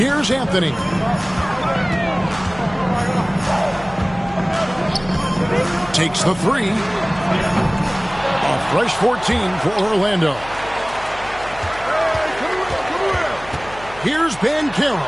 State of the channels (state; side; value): noise; left; hum, 18 dB below the sound